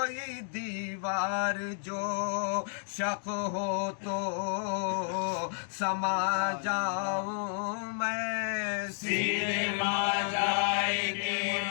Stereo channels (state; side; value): silent; right; 57 dB below the other